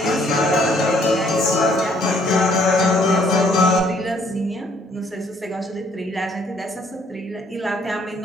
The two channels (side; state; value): both; normal; correlation 0.64